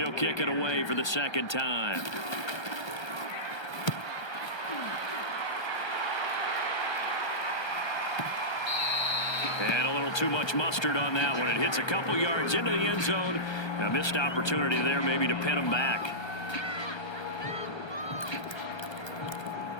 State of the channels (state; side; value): late; right; 1.3 ms